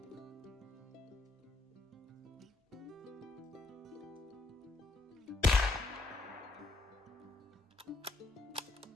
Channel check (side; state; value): right; quieter; 3.2 dB